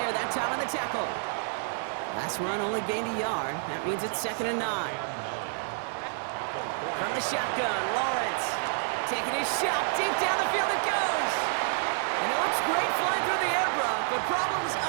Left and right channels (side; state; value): left; silent; digital silence